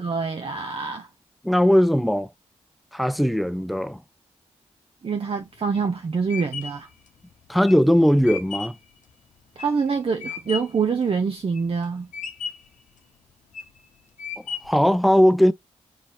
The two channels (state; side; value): normal; both; correlation 0.91